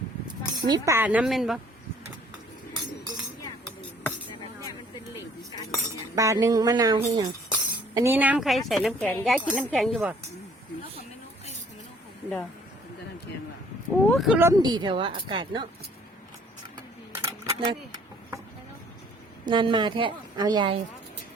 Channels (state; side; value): normal; both; correlation 0.58